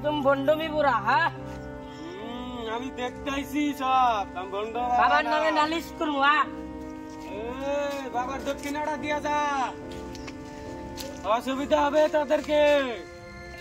তুমি বন্ডমি পুরা হ্যাঁ আমি দেখতেছি সব আমি বন্ধ বাবার নামে নালিশ করবো বাবার দক্ষিণাটা দিয়া যা অসুবিধা হবে তাদেরকে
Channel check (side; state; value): both; identical; correlation 1.00